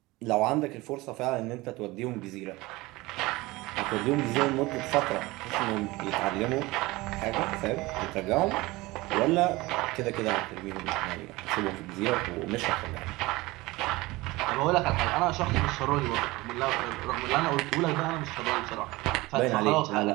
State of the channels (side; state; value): left; quieter; 21.0 dB